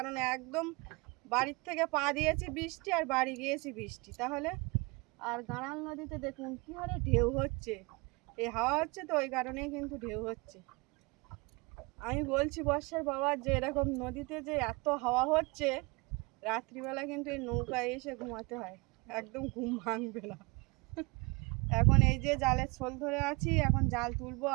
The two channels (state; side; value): quieter; left; 27.3 dB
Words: একদম বাড়ির থেকে পা দিয়েছি বৃষ্টি আর বাড়ি গিয়েছি বৃষ্টি। তাহলে আর গাড়াল নদীতে দেখুন কী হারে ঢেউ হচ্ছে, এই হাওয়া হচ্ছে তো ওই কারণেই কিন্তু ঢেউ হচ্ছে। আমি বলছি বর্ষার বাবা যে এরকম নদীতে যে এত হাওয়া হচ্ছে, রাত্রিবেলা কিন্তু এই নৌকায় এসে ঘুমাতে হয়, একদম ঘুম ভাঙবে না। এখন এই যে জালের ছোল ধরে আছি, এখন জাল তুলবো।